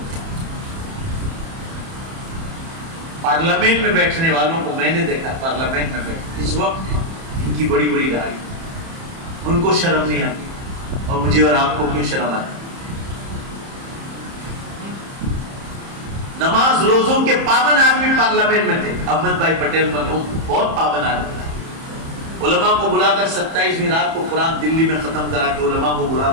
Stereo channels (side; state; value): left; late; 30 ms